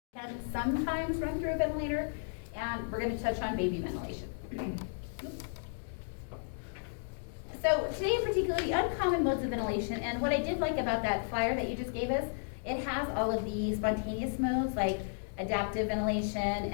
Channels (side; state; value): right; silent; digital silence